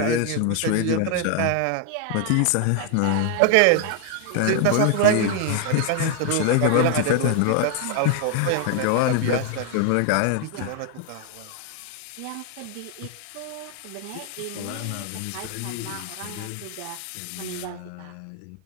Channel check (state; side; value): different; both; correlation 0.00